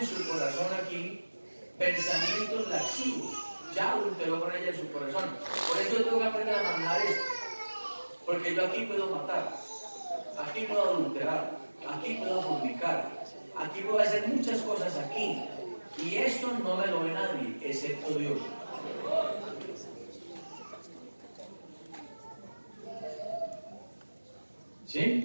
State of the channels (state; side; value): inverted; both; correlation -1.00